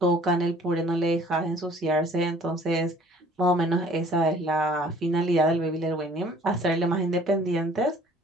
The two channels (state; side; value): normal; both; correlation 0.54